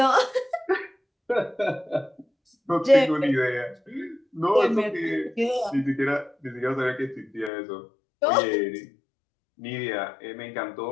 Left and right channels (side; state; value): right; drops out; at 7.5 s